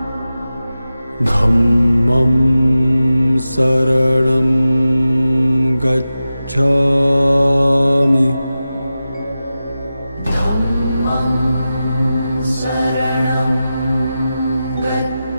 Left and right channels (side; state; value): both; inverted; correlation -0.93